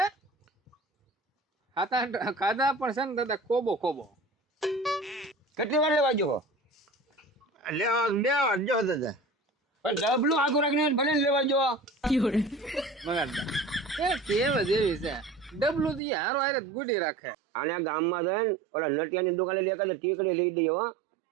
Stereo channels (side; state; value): left; drops out; at 16.0 s